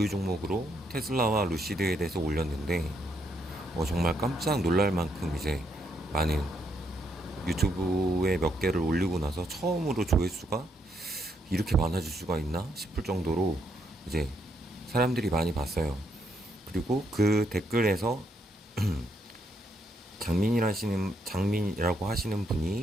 종목으로 테슬라와 루시드에 대해서 올렸는데, 정말 깜짝 놀랄 만큼 이제 많은 유튜브에 몇 개를 올리고 나서 처음으로 조회수가 이렇게 많아질 수가 있나 싶을 정도로 이제 사람들이 많이 봤어요. 그리고 그 댓글에서 장민이라고 하시는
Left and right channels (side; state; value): both; normal; correlation 0.76